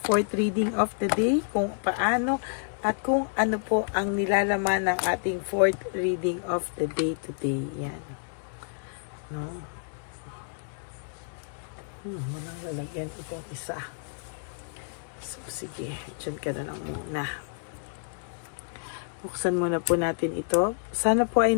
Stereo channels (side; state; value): right; silent; 59 dB below the other